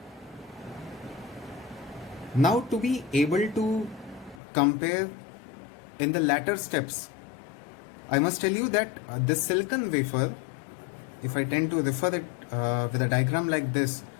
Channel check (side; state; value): right; drops out; at 4.4 s